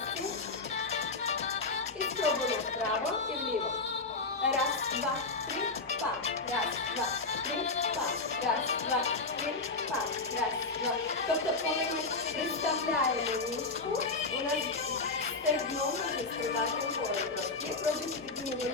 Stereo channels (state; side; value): quieter; right; 3.8 dB